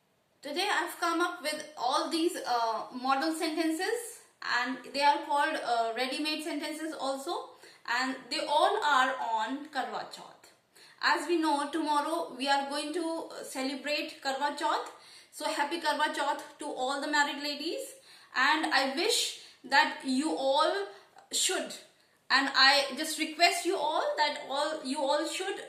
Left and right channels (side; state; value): both; identical; correlation 1.00